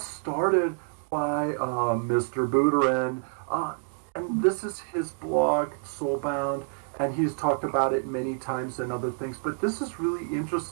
by Mr. Buterin, and this is his blog, Soulbound, and he's talked about it many times and other things, but this is really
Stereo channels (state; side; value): silent; left; 60 dB below the other